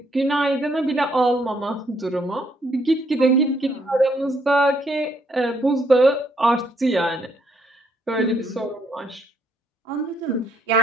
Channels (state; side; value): normal; both; correlation 0.71